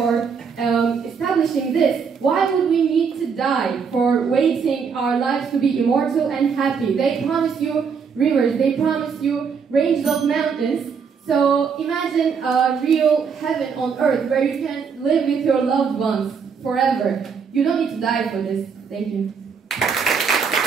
establishing this, why would we need to die for waiting our lives to be immortal and happy? They promise you rivers, they promise you ranges of mountains. So imagine a real heaven on earth where you can live with your loved ones forever. You don't need to die for this. Thank you.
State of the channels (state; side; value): quieter; left; 6.1 dB